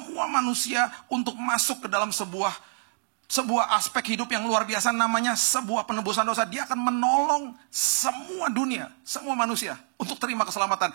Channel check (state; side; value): silent; left; 60 dB below the other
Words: manusia untuk masuk ke dalam sebuah aspek hidup yang luar biasa, namanya sebuah penebusan dosa. Dia akan menolong semua dunia, semua manusia untuk terima keselamatan.